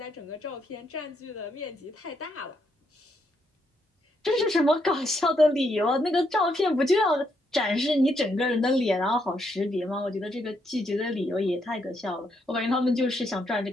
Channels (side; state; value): both; normal; correlation 0.76